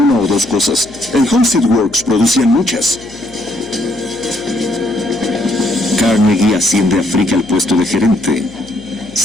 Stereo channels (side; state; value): left; noise; hum, 23 dB below the sound